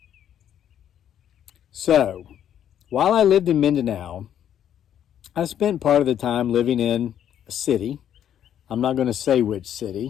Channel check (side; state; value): right; quieter; 10.0 dB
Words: So, while I lived in Mindanao, I spent part of the time living in a city. I'm not going to say which